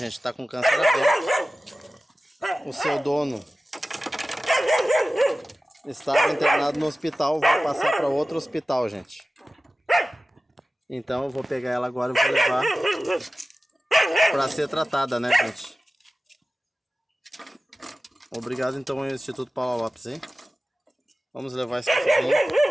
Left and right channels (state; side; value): normal; both; correlation 0.96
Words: tá com câncer aberto. O seu dono estava internado no hospital, vou passar para outro hospital, gente. Então eu vou pegar ela agora e vou levar para ser tratada, né, gente? Obrigado então ao Instituto Paula Lopes, hein? Vamos levar esse